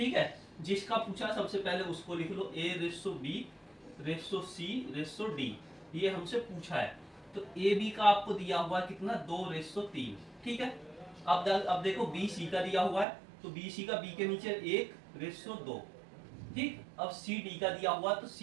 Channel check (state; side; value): drops out; left; at 13.1 s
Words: है। जिसका पूछा सबसे पहले उसको लिख लो, A:B:C:D, ये हमसे पूछा है। तो AB का आपको दिया हुआ है कितना 2:3, ठीक है। अब देखो BC का दिया हुआ है, तो BC का B के नीचे 1:2, ठीक। अब CD का दिया हुआ तो